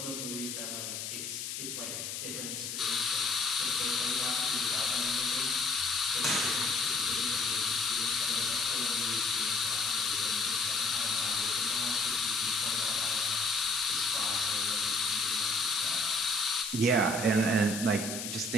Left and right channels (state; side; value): noise; left; hiss, 5 dB below the sound